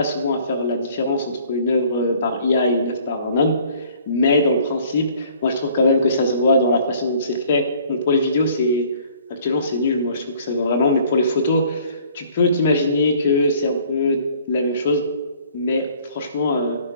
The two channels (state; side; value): inverted; both; correlation -0.56